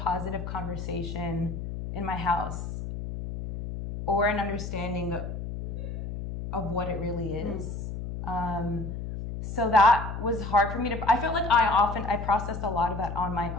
conversation in my house or an understanding of what it really is. So that was hard for me to, I felt like I processed a lot of that on my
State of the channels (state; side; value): noise; left; hum, 6 dB below the sound